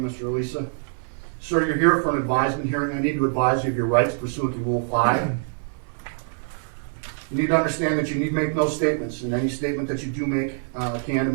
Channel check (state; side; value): silent; left; 57 dB below the other